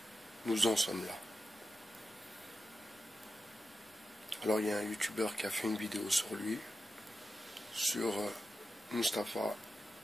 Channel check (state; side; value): normal; both; correlation 0.90